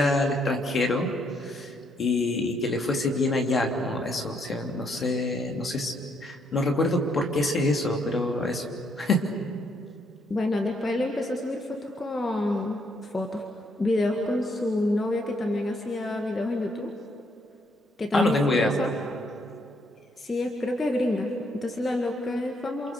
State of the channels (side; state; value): both; normal; correlation 0.72